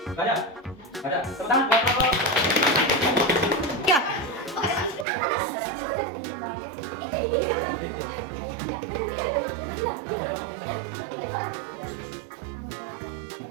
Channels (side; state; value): left; drops out; at 5.1 s